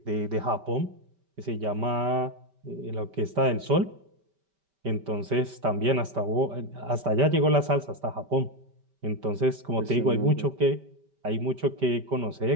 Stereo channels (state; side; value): late; left; 5.1 ms